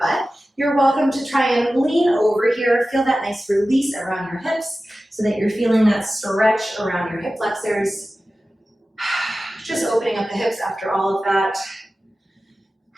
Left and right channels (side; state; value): both; normal; correlation 0.95